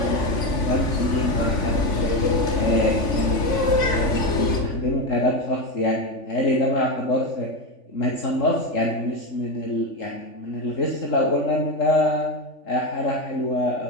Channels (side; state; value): right; late; 3.5 ms